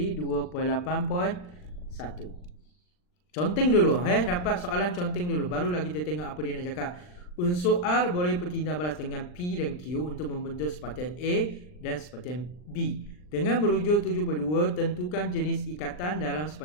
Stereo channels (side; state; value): right; late; 39 ms